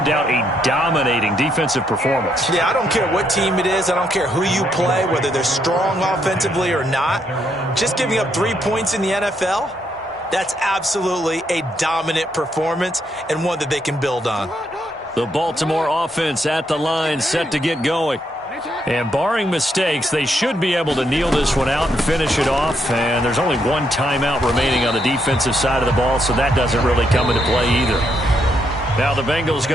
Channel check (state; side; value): normal; both; correlation 0.76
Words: doubt a dominating defensive performance. Yeah, I don't care what team it is. I don't care who you play, whether they're strong offensively or not. Just giving up 3 points in the NFL, that's absolutely a dominant performance and one that they can build on. The Baltimore offense at the line, set to get going. And barring mistakes, they should be able to kneel this one out and finish it off. And there's only one timeout remaining on the defensive side of the ball, so that doesn't really come into play either. Now the Bengals